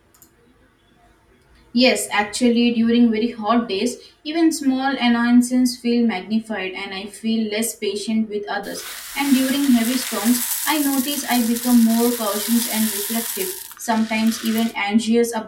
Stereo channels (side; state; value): both; identical; correlation 1.00